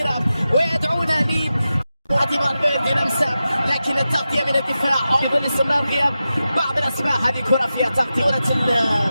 ويدعونا فالفيردي لمسه، لكن التغطية من الدفاع في ظل استمرار غياب بعض الأسماء. هذه كرة فيها تغطية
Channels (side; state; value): both; inverted; correlation -0.92